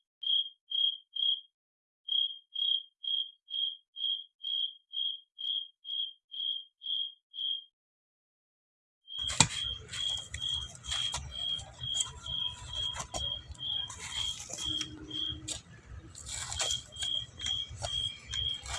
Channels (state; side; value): normal; both; correlation 0.86